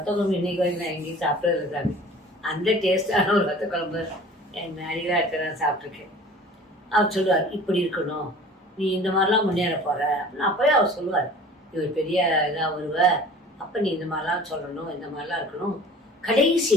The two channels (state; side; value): normal; both; correlation 0.45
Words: குழம்பு இன்னைக்கு வரைக்கும் நான் எங்கேயும் சாப்பிட்றது சாமி. அந்த டேஸ்டான ஒரு ஒத்த குழம்பு என் அடிகளாக இருக்கிற சாப்பிட்ருக்கேன். அவர் சொல்லுவார், இப்படி இருக்கணும், நீ இந்த மாதிரிலாம் முன்னேற போகிற அப்படின்னு. அப்போயே அவர் சொல்லுவார், இவர் பெரிய இதாக வருவ, அப்போ நீ இந்த மாதிரிலாம் சொல்லணும், இந்த மாதிரிலாம் இருக்கணும். கடைசி